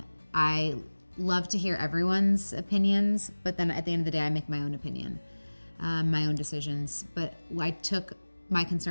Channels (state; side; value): inverted; both; correlation -1.00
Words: I love to hear everyone's opinions, but then at the end of the day, I make my own opinion. My own decisions. But I took my